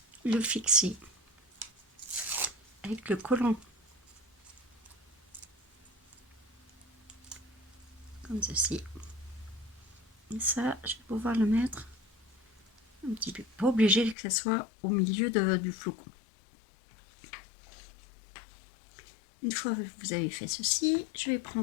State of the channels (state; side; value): drops out; right; at 14.2 s